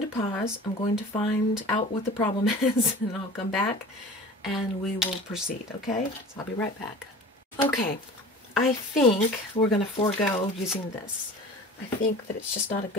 to pause. I'm going to find out what the problem is, and I'll come back and we will proceed, okay? So I'll be right back. Okay, I think we're going to forego using this. I think that it's just not a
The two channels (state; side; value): normal; both; correlation 0.40